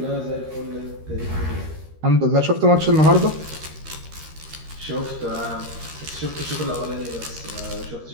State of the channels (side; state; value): left; late; 13 ms